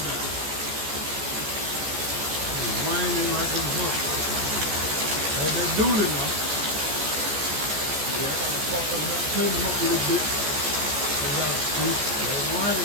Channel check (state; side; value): late; left; 14 ms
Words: down. It's whining like a book. That's that dully now. Yeah, I gotta fuck them up, clean them up a little bit. They got to see. They're